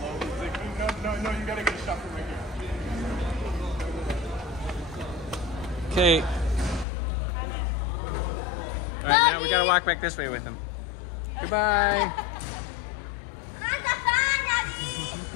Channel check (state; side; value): drops out; right; at 6.9 s